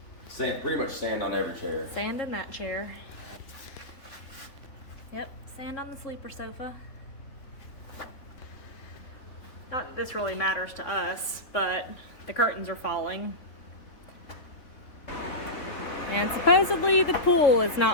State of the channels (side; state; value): right; late; 3.7 ms